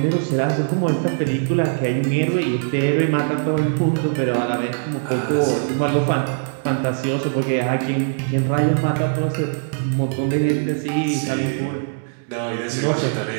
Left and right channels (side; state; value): left; silent; digital silence